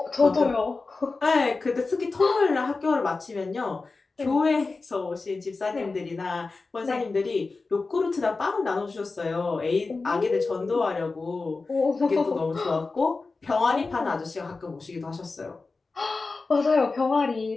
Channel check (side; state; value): right; quieter; 3.9 dB